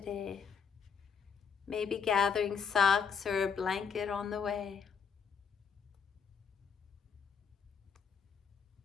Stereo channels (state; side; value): quieter; right; 6.3 dB